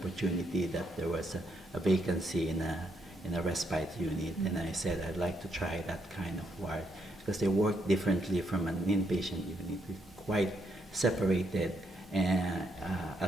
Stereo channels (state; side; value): normal; both; correlation 0.76